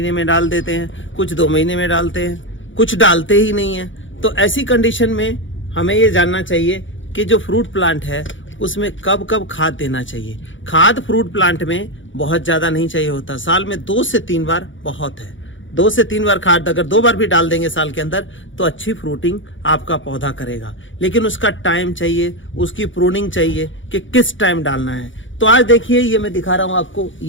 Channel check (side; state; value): right; late; 0.56 ms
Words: में डाल देते हैं, कुछ 2 महीने में डालते हैं, कुछ डालते ही नहीं है। तो ऐसी कंडीशन में हमें ये जानना चाहिए कि जो फ्रूट प्लांट है उसमें कब कब खाद देना चाहिए। खाद फ्रूट प्लांट में बहुत ज़्यादा नहीं चाहिए होता, साल में 2 से 3 बार बहुत है। 2 से 3 बार खाद अगर 2 बार भी डाल देंगे साल के अंदर तो अच्छी फ्रूटिंग आपका पौधा करेगा। लेकिन उसका टाइम चाहिए, उसकी प्रूनिंग चाहिए कि किस टाइम डालना है। तो आज देखिए, ये मैं दिखा रहा हूँ आपको,